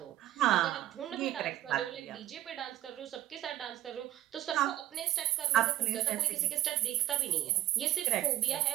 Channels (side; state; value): left; quieter; 14.0 dB